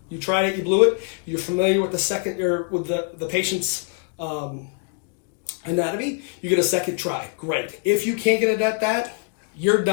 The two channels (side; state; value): right; quieter; 39.0 dB